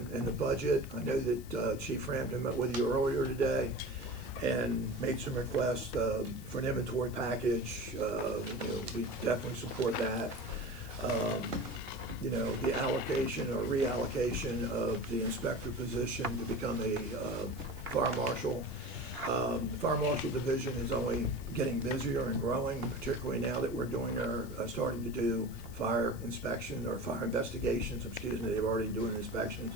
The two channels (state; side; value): noise; left; hiss, 20 dB below the sound